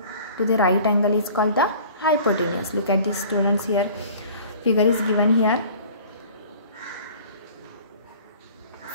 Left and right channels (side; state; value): both; inverted; correlation -0.47